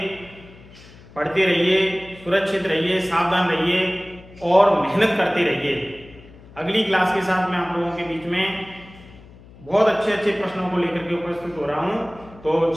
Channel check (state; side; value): noise; left; hum, 22 dB below the sound